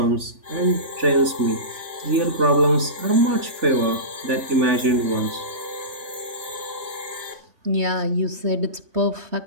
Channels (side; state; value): left; late; 3.4 ms